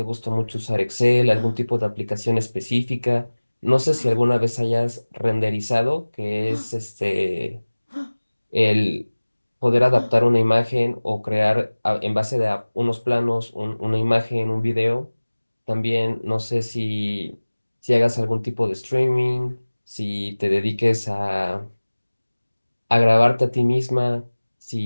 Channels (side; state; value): both; inverted; correlation -1.00